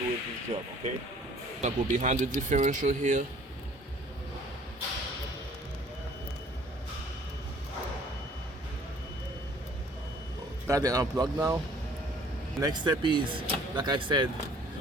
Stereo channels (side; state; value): both; normal; correlation 0.55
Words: this job, okay? I'll go behind the differential here. Got it unplugged now. Next step is, like I said,